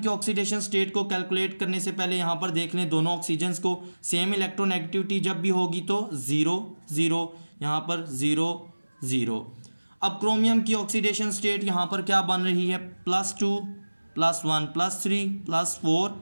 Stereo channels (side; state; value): both; inverted; correlation -1.00